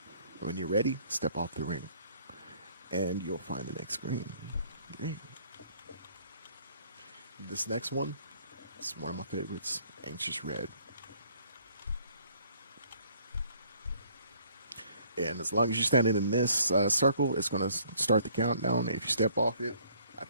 When you're ready, step off the ring, and you'll find the next green. This next one, it's one of my favorites, Anxious Red. And as long as you're standing in this circle, it's going to start the countdown. If you step off it, I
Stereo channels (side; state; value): both; inverted; correlation -0.61